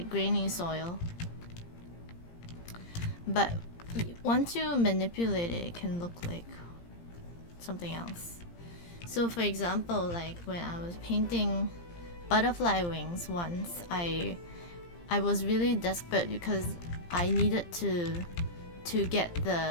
grainy soil. But once you manipulate it, it can look like something else. So for example, like when I was painting butterfly wings once, I was really desperate because I needed to get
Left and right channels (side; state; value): right; late; 17 ms